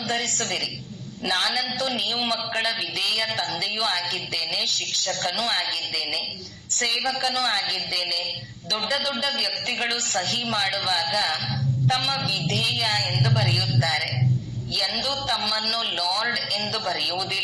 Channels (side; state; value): both; identical; correlation 1.00